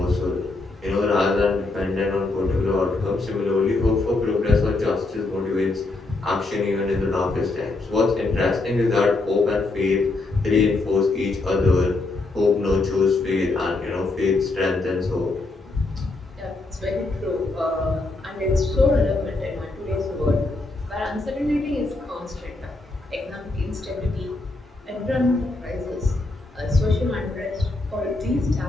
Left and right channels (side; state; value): right; quieter; 3.2 dB